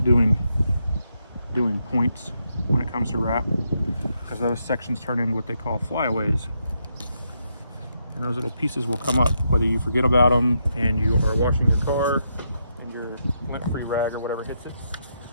doing points when it comes to wrap, because those sections turn into what they call flyaways. And those little pieces will come up whether you forget about them and you are washing your car and your lint-free rag or whatever hits it.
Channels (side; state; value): both; inverted; correlation -0.80